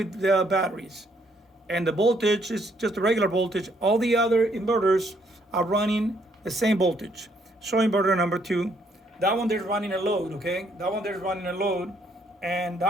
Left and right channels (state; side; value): normal; both; correlation 0.69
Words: the batteries. And the voltage is just a regular voltage. All the other inverters are running the same voltage. So inverter number 2, that one there's running a load, okay? That one there's running a load, and